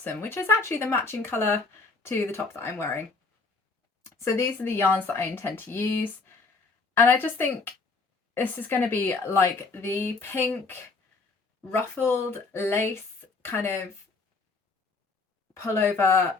which is actually the matching colour to the top that I'm wearing. So these are the yarns that I intend to use, and I just think this is going to be like the pink ruffled lace kind of pullover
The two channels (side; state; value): right; quieter; 4.1 dB